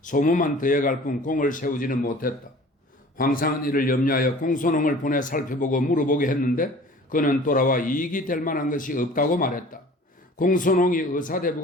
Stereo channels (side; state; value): both; normal; correlation 0.46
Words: 더해갈 뿐 공을 세우지는 못했다. 황상은 이를 염려하여 공소농을 보내 살펴보고 물어보게 했는데 그는 돌아와 이익이 될 만한 것이 없다고 말했다. 공소농이